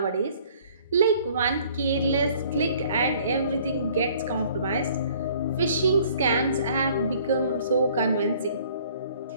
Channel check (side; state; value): both; inverted; correlation -0.57